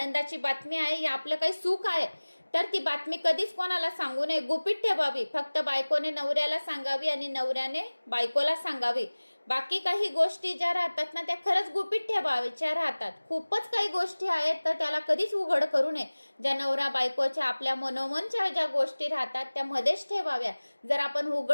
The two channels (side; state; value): both; inverted; correlation -1.00